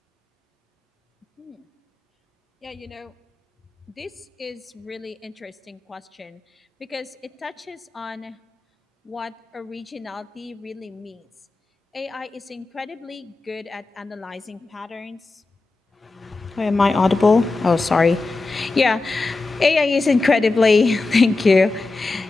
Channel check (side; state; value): right; quieter; 3.5 dB